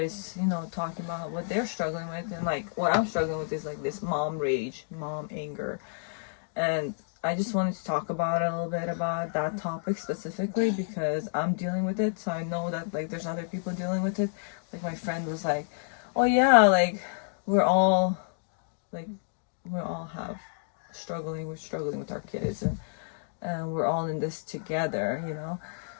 talking about what they're struggling with, and like what I'm struggling with is like this mom rage, mom anger. And I just wanted to talk about a little bit about that topic specifically because I'm dealing with it, so I know that like there's other people dealing with it. Like my friend was like, well, yeah, like we're all like we all have we're struggling with our kids, and we're all in this together, you know.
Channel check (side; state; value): right; silent; digital silence